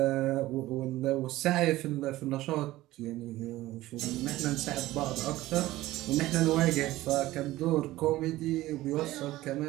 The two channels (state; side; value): quieter; left; 16.8 dB